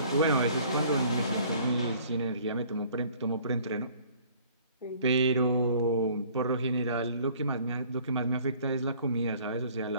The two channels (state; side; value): inverted; both; correlation -0.54